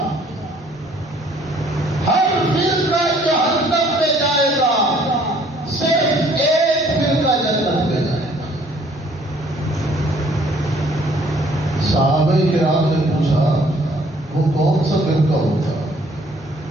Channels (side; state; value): both; normal; correlation 0.60